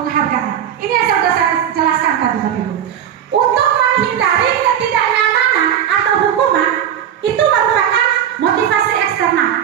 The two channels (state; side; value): quieter; left; 9.7 dB